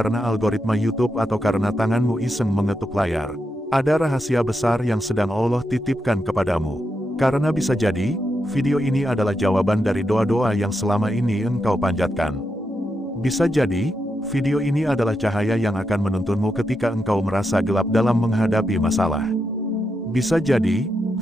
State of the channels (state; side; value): normal; both; correlation 0.84